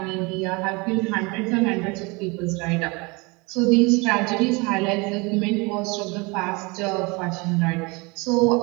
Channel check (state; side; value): quieter; left; 27.4 dB